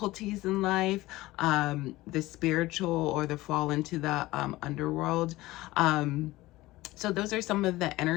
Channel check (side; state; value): right; quieter; 18.4 dB